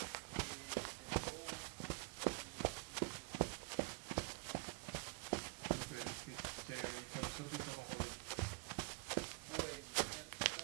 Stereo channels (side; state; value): left; quieter; 29.9 dB